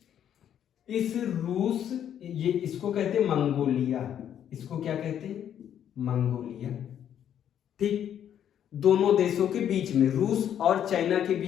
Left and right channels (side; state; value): right; quieter; 9.7 dB